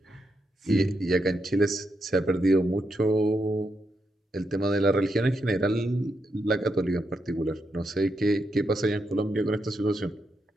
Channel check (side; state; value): both; normal; correlation 0.83